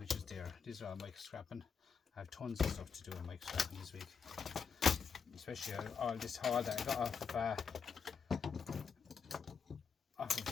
is there. These are all micro scrapping. I have tons of stuff to do in micro scrapping this week. Especially all this haul that I got off of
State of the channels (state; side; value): quieter; right; 6.2 dB